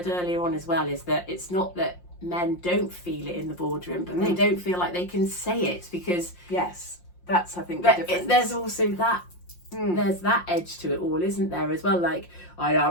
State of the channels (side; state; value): right; late; 5.6 ms